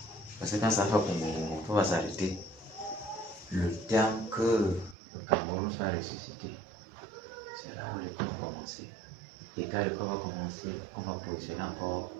Parce que quand ça fait on va s'arrêter. Le temps que le Cameroun soit ressuscité, c'est là où l'école va commencer. Et quand l'école va commencer, on va positionner encore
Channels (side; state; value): left; drops out; at 5.0 s